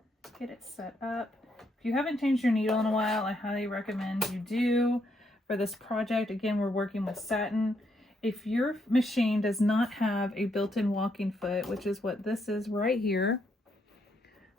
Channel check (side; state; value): both; normal; correlation 0.76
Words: get it set up. If you haven't changed your needle in a while, I highly recommend you do. For this project, again, we're working with satin. If your machine does not have a built-in walking foot, which is what this is right here,